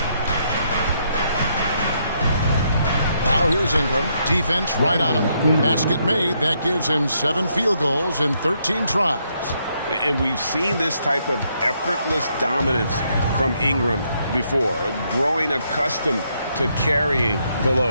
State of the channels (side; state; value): both; inverted; correlation -0.75